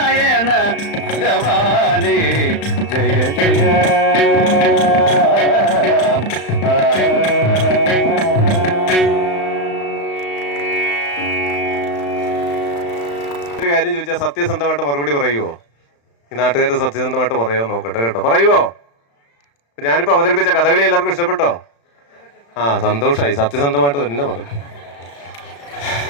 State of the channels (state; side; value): late; right; 35 ms